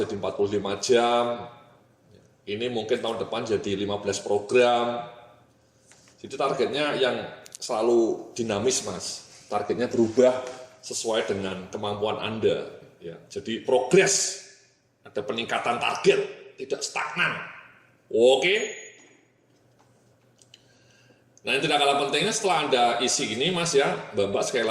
45 jam, ini mungkin tahun depan jadi 15 program. Jadi targetnya yang selalu dinamis Mas, targetnya berubah sesuai dengan kemampuan Anda. Ya, jadi progres, ada peningkatan target, tidak stagnan. Oke. Nah, yang tidak kalah pentingnya setelah Anda isi ini Mas ya, Mbak sekali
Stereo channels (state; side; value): identical; both; correlation 1.00